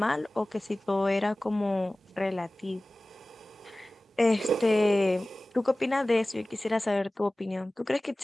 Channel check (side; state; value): both; normal; correlation 0.98